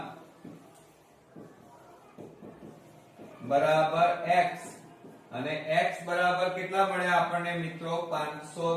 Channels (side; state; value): both; identical; correlation 1.00